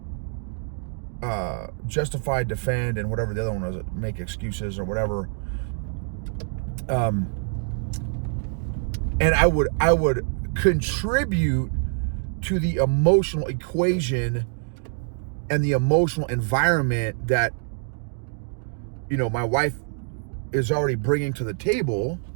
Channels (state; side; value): silent; left; 62 dB below the other